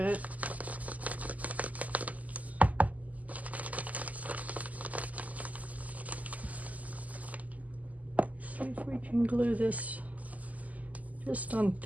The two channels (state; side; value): late; left; 0.076 ms